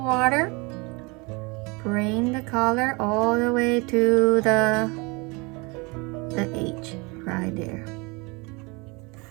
Bring the color all the way to the edge right there.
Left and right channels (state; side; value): quieter; left; 27.6 dB